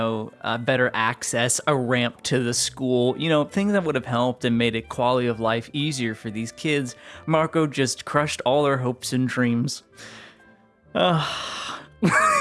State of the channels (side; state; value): both; identical; correlation 1.00